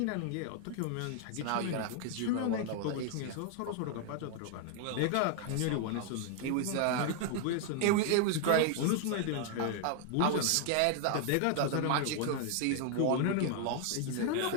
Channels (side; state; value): both; different; correlation 0.00